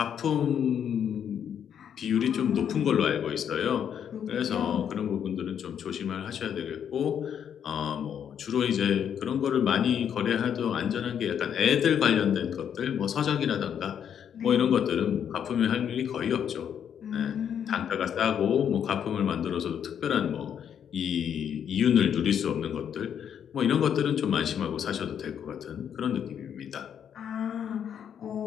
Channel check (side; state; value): right; quieter; 8.6 dB